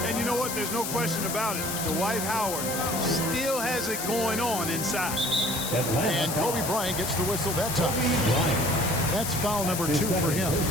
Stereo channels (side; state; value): left; noise; hiss, 4 dB below the sound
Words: you know what? There's no question about it. Dwight Howard still has it going on inside. And Kobe Bryant gets the whistle that time. That's foul number 2 for him.